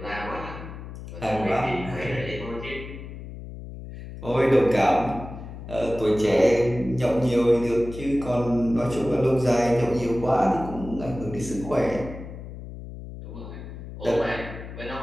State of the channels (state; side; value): noise; left; hum, 11 dB below the sound